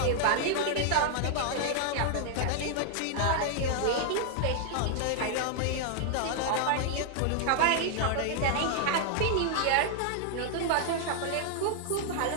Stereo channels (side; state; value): both; different; correlation 0.00